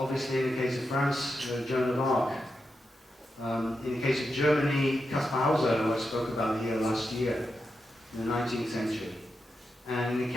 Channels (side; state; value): both; normal; correlation 0.87